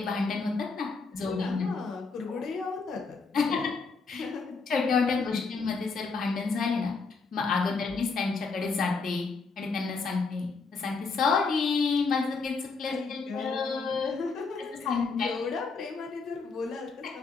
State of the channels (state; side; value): quieter; right; 4.5 dB